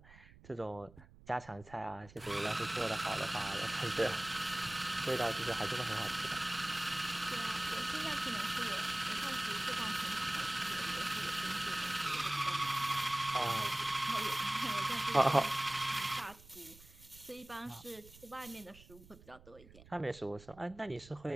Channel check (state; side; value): noise; right; rumble, 22 dB below the sound